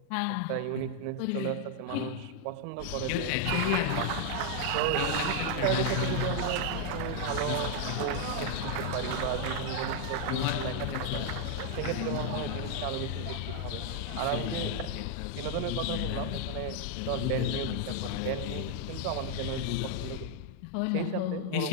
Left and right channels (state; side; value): different; both; correlation 0.00